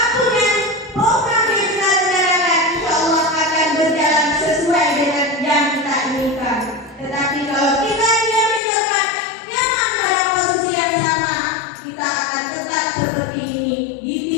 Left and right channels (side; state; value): right; drops out; at 8.6 s